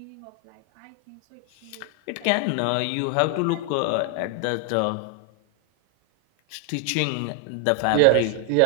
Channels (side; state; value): both; different; correlation 0.00